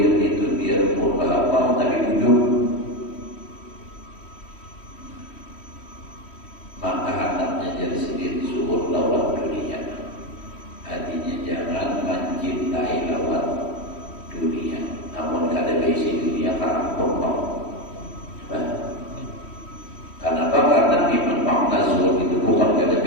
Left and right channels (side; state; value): right; late; 3.1 ms